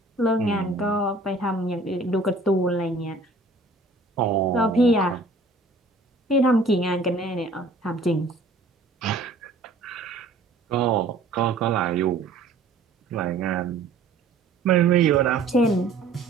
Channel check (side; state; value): left; quieter; 3.3 dB